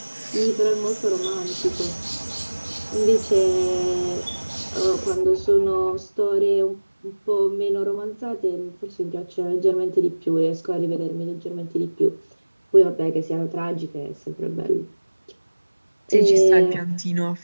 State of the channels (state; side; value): inverted; both; correlation -1.00